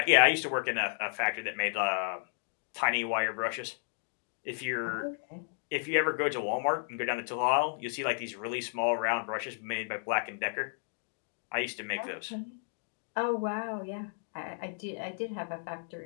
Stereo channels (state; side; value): silent; right; digital silence